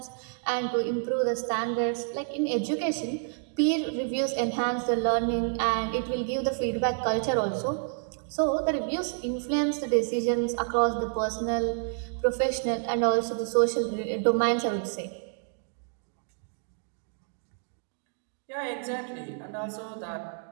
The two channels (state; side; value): silent; left; 56 dB below the other